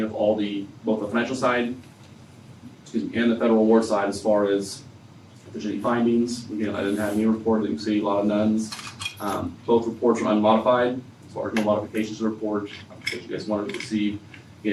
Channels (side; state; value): both; identical; correlation 1.00